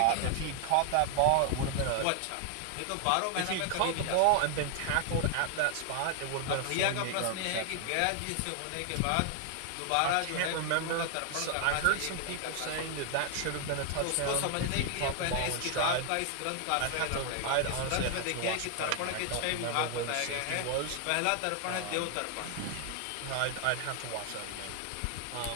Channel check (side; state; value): both; different; correlation 0.00